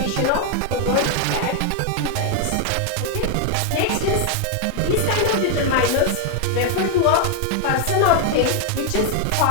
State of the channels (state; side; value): different; both; correlation 0.00